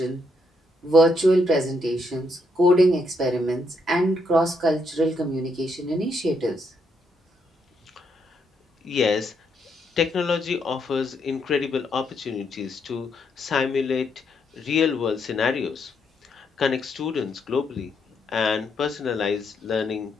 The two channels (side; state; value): both; normal; correlation 0.76